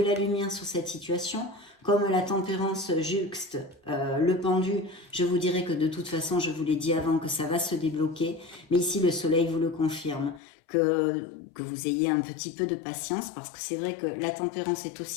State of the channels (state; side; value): drops out; right; at 10.4 s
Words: lumière sur cette situation. Comme la tempérance juxte le pendu, je vous dirais que de toute façon, je vous l'ai dit avant, que ça va se débloquer. Mais ici, le soleil vous le confirme. Que vous ayez un petit peu de patience, parce que c'est vrai que la tempérance est